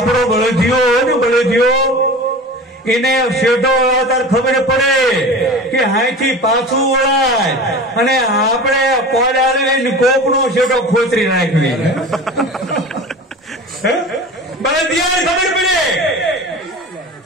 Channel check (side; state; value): both; normal; correlation 0.35